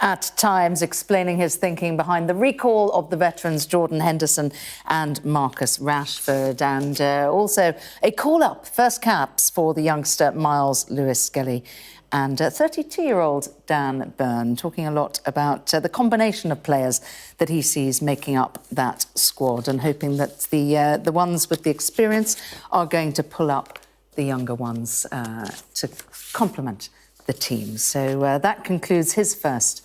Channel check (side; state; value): both; identical; correlation 1.00